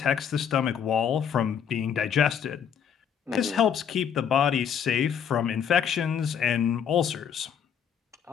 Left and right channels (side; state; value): right; quieter; 8.0 dB